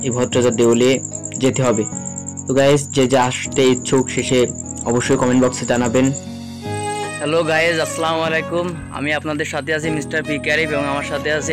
এই ভট্টরাজার দেউলে যেতে হবে। তো গাইজ যে আসতে ইচ্ছুক শেষে অবশ্যই কমেন্ট বক্সে জানাবেন। হ্যালো গাইজ, আসসালামু আলাইকুম। আমি আপনাদের সাথে আছি মিস্টার পি ক্যারিফ এবং আমার সাথে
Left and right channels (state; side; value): identical; both; correlation 1.00